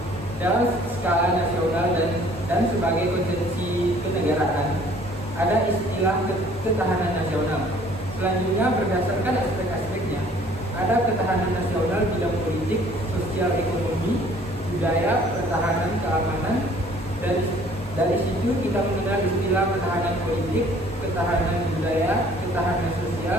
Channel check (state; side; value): normal; both; correlation 0.56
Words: dalam skala nasional dan sebagai konsepsi kenegaraan. Ada istilah ketahanan nasional. Selanjutnya berdasarkan aspek-aspeknya, ada ketahanan nasional bidang politik, sosial, ekonomi, budaya, pertahanan, keamanan. Dari situ kita mengenal istilah ketahanan politik, ketahanan budaya, ketahanan